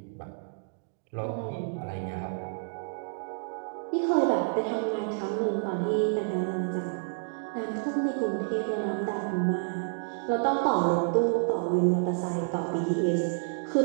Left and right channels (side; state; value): left; silent; digital silence